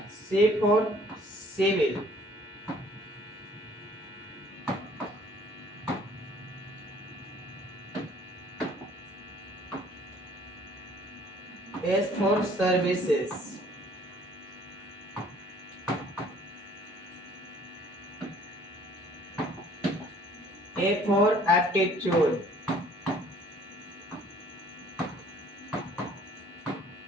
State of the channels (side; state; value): both; normal; correlation 0.56